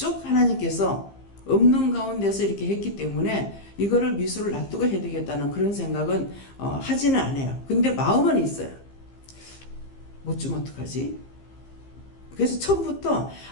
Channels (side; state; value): right; late; 15 ms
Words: 하나님께서 없는 가운데서 이렇게 했기 때문에 이거를 미수를 놔두고 해야 되겠다는 그런 생각은 하지는 않아요. 근데 마음은 있어요. 못 주면 어떡하지? 그래서 처음부터